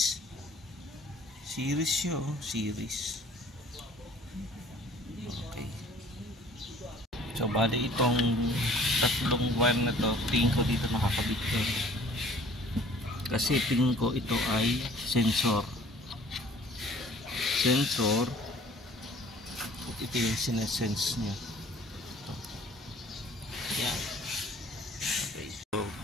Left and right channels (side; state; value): both; normal; correlation 0.52